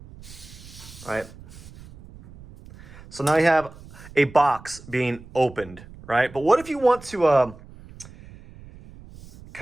All right. So now you have a box being opened, right? But what if you want to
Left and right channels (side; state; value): right; noise; rumble, 19 dB below the sound